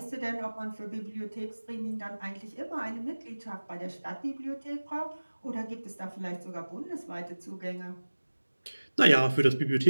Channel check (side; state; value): both; inverted; correlation -1.00